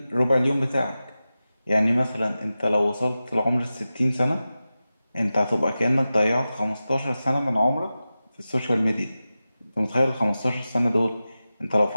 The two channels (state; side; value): inverted; both; correlation -0.94